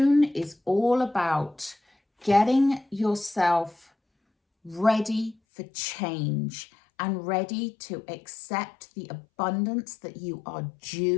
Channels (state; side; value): drops out; right; at 5.4 s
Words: is all about getting yourself ready for change and ready to accept the abundance that you are